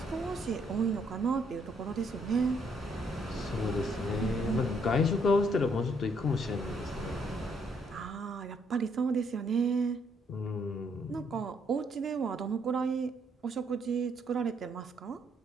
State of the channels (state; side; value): normal; both; correlation 0.70